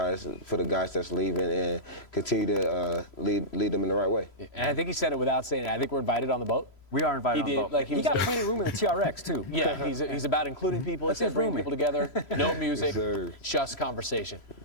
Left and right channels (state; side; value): late; right; 3.0 ms